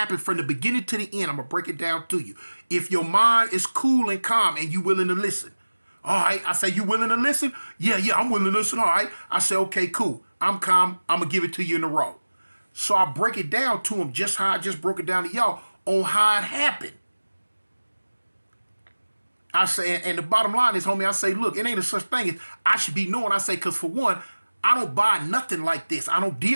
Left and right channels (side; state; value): both; inverted; correlation -1.00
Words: from the beginning to the end. I'm going to break it down to you. If your mind is cool and calm and you willing to listen. All right. I say, you willing to listen? Yeah, I'm willing to listen. All right. I say, okay, cool. I'm calm. I'm going to give it to you in a row. So I break it down to him just how I just broke it down to y'all on how it happened. I say, and the bottom line is, homie, I say, look, it ain't a such thing as I should be knowing. I say, because for one, I don't buy nothing like this. I don't